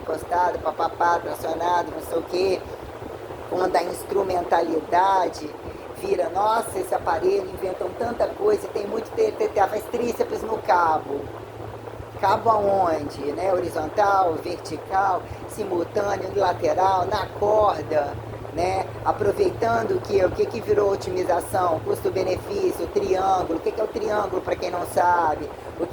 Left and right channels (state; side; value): identical; both; correlation 1.00